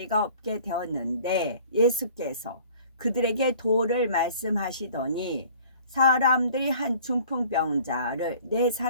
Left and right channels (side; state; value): both; inverted; correlation -0.50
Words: 없게 되었는데 예수께서 그들에게 도를 말씀하시더니 사람들이 한 중풍병자를 네